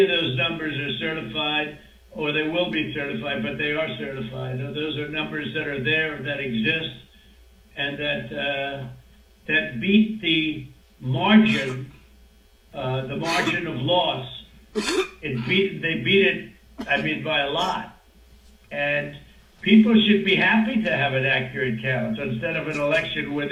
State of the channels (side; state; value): both; identical; correlation 1.00